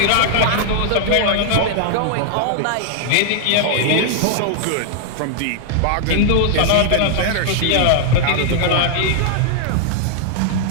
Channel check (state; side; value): different; both; correlation 0.00